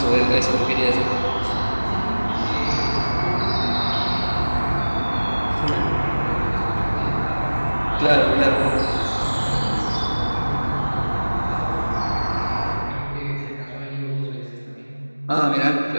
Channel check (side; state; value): both; inverted; correlation -1.00